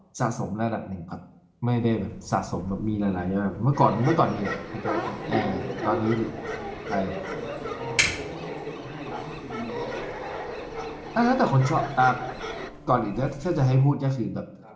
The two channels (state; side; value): identical; both; correlation 1.00